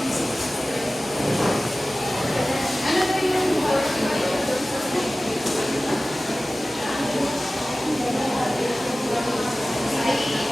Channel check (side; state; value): both; normal; correlation 0.97